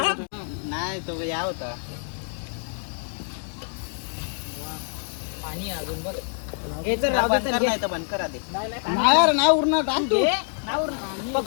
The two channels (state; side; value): silent; right; 61 dB below the other